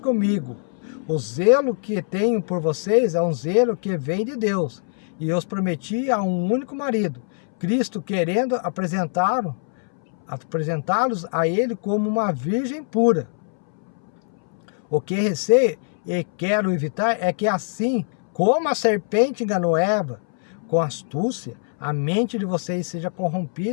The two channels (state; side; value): silent; right; 63 dB below the other